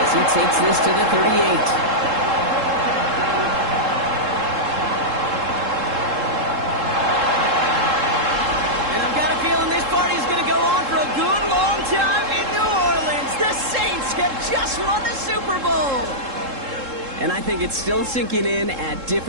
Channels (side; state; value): left; late; 3.7 ms